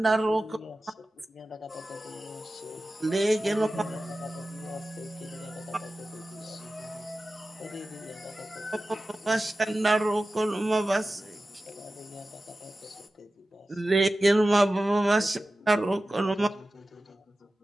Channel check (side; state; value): both; normal; correlation 0.95